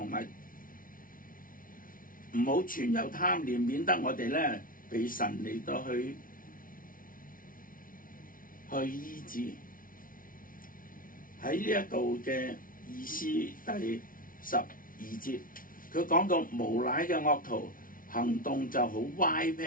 埋，唔好存有貪念，免得我哋咧被神嚟到去醫治。喺呢一度嘅意思第12節，佢講到無賴嘅惡徒行動就好歪僻，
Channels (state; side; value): late; right; 0.40 ms